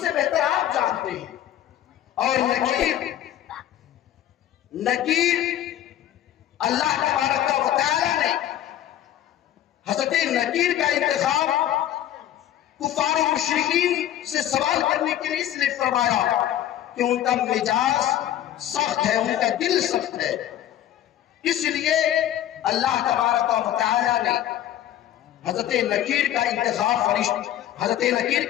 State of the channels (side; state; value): right; quieter; 12.0 dB